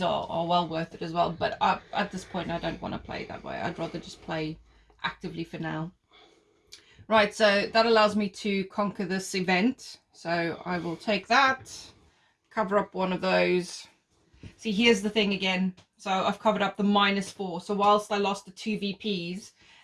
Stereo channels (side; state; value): both; identical; correlation 1.00